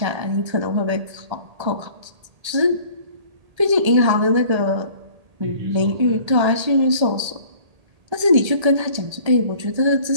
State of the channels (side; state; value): left; late; 1.8 ms